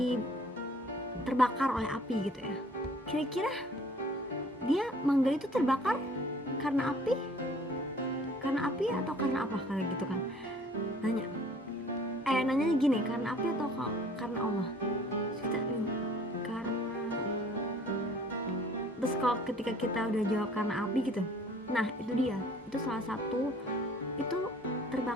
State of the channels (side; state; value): both; normal; correlation 0.54